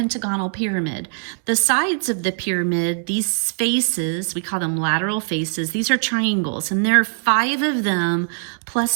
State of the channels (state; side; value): silent; left; 65 dB below the other